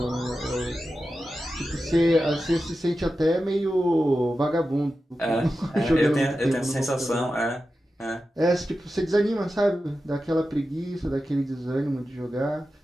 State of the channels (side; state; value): both; normal; correlation 0.92